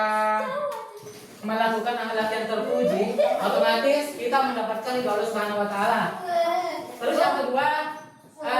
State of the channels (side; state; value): both; identical; correlation 1.00